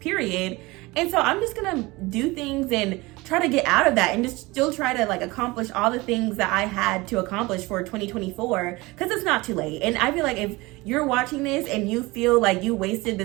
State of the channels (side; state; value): left; quieter; 22.3 dB